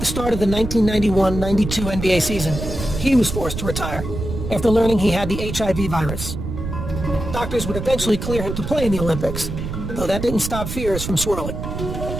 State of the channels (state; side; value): noise; right; rumble, 6 dB below the sound